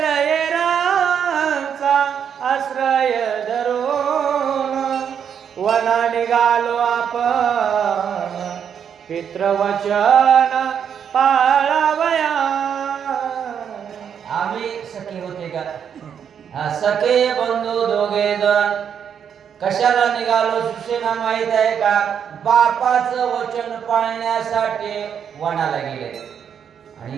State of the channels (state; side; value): quieter; left; 8.0 dB